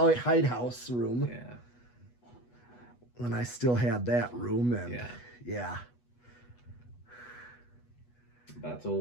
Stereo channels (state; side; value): late; right; 8.2 ms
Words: house room. Yeah. When I still had that room, and yeah. That's